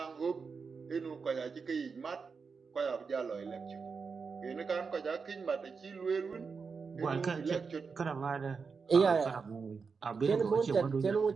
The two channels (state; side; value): quieter; left; 5.2 dB